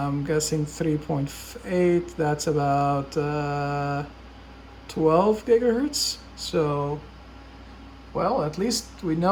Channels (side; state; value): both; identical; correlation 1.00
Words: guessing 3.8. That's about 12 gigahertz. So, well, at least we